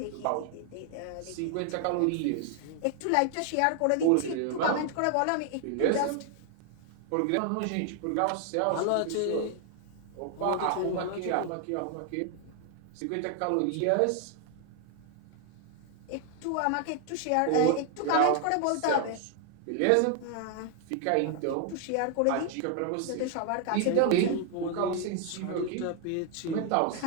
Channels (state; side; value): different; both; correlation 0.00